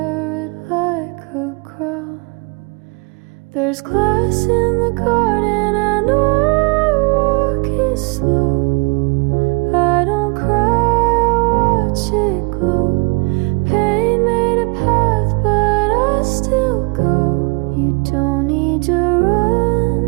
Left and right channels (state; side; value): quieter; left; 30.4 dB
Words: it like a crown. There's glass in the garden, I know I walk it slow. I don't cry, I watch it glow. Pain made a path, but I still go. You don't need to